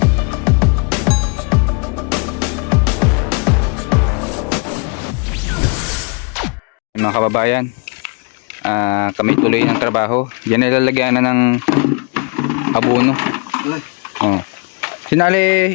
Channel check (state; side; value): quieter; right; 34.5 dB